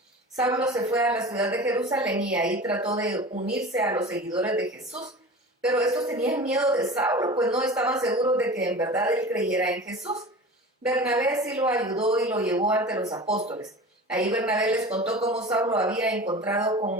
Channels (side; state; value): both; normal; correlation 0.35